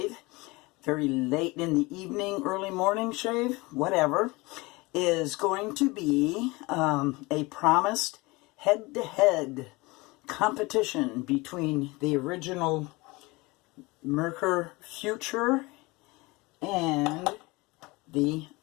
very late in the evening, early morning shave, whatever, is going to be a promised head-to-head competition between the original Merkur Futur and the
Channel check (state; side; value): quieter; right; 23.7 dB